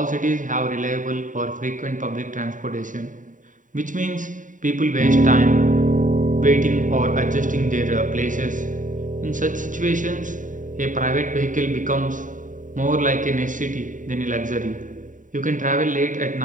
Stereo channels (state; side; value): late; left; 0.38 ms